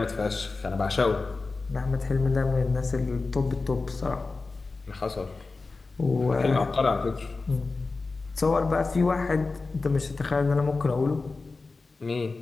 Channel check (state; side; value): quieter; right; 3.8 dB